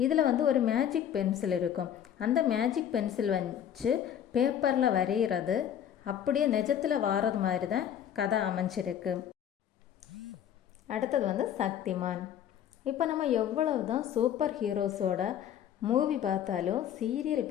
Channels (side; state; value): right; quieter; 9.7 dB